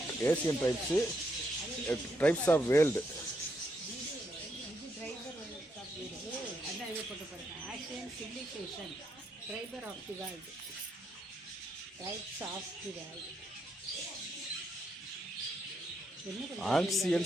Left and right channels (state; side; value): normal; both; correlation 0.78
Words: tribes of world.